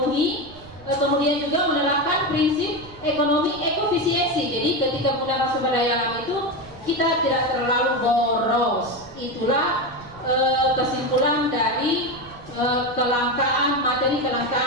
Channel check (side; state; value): right; noise; rumble, 20 dB below the sound